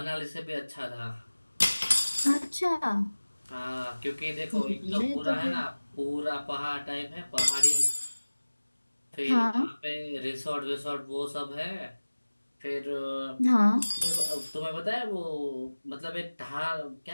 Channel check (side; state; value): both; inverted; correlation -1.00